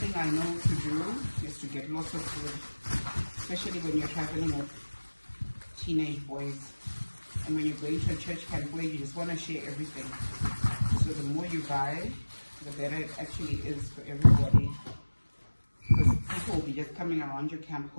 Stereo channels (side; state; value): both; inverted; correlation -1.00